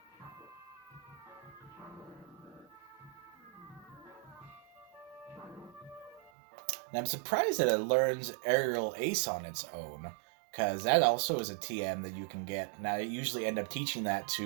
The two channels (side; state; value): left; drops out; at 6.3 s